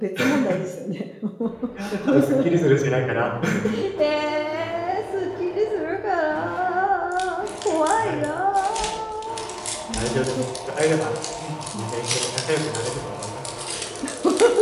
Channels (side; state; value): both; identical; correlation 1.00